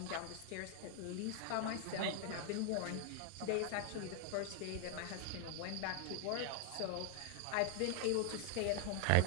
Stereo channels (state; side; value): different; both; correlation 0.00